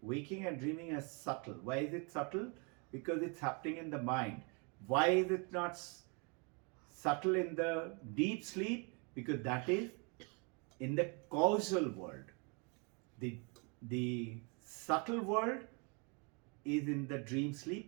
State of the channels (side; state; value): left; quieter; 33.7 dB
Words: waking and dreaming, are subtle. Why is it subtle? Because it's happening in the mind. Why is it not subtle in the deep sleep? Because that is in the causal world. The subtle world is in the dream